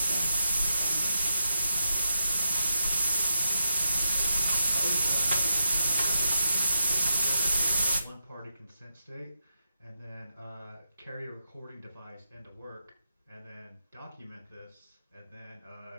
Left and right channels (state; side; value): inverted; both; correlation -0.83